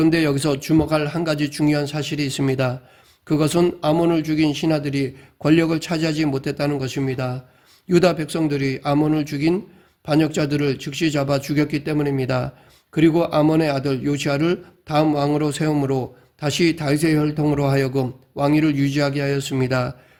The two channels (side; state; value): both; identical; correlation 1.00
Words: 여기서 주목할 한 가지 중요한 사실이 있습니다. 그것은 아몬을 죽인 신하들이 권력을 차지하지 못했다는 것입니다. 유다 백성들이 아몬을 죽인 반역자들을 즉시 잡아 죽였기 때문입니다. 그리고 아몬의 아들 요시아를 다음 왕으로 세움으로 다시 다윗의 혈통으로 하여금 왕위를 유지하게 하였습니다.